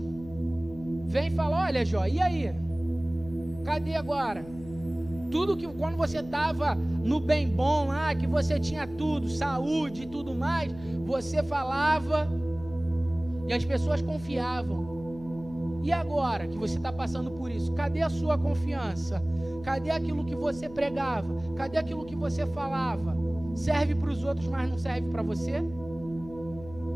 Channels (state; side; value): noise; left; hum, 17 dB below the sound